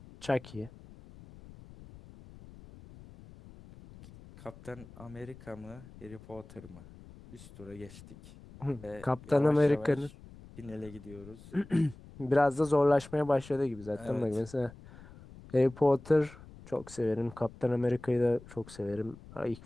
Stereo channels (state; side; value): noise; left; rumble, 19 dB below the sound